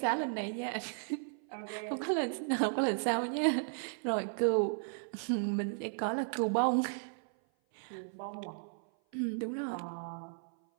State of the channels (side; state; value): left; silent; 54 dB below the other